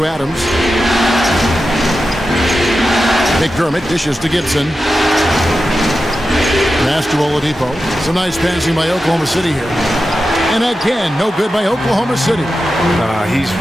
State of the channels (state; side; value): normal; both; correlation 0.91